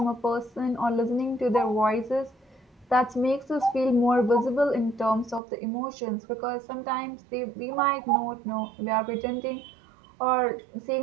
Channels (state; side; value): drops out; left; at 5.4 s